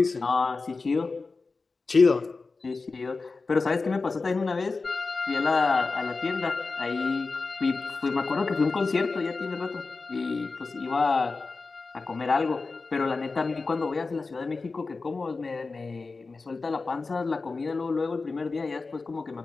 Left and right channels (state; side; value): quieter; right; 4.0 dB